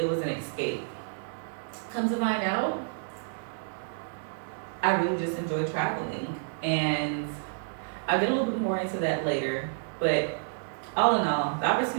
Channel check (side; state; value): left; silent; digital silence